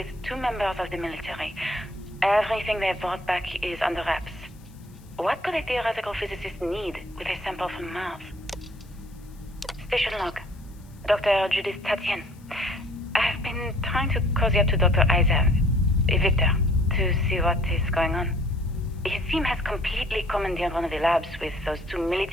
2 members of the military. Everything they brought back is under wraps. What could a theoretical physicist need with a sample from Mars? Station log. Dr. Judith Tatien. I've been trying to cozy up to Dr. Isa, Victor, to see what is going on. His team has completely commandeered one of the labs with those 2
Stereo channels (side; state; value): left; noise; hiss, 29 dB below the sound